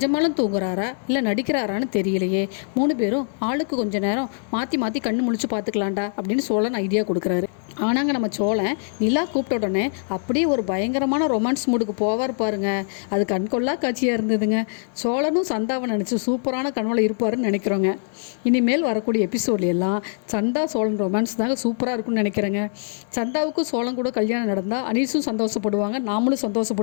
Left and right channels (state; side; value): silent; right; 57 dB below the other